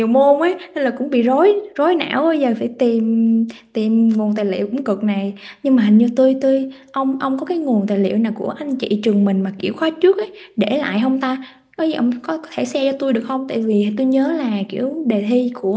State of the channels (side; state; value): both; identical; correlation 1.00